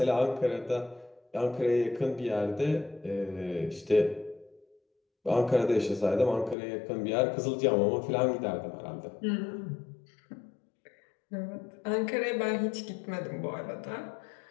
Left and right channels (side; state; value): right; drops out; at 6.6 s